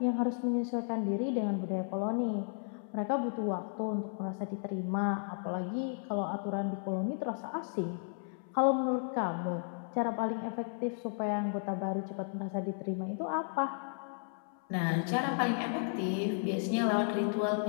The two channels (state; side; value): silent; right; 55 dB below the other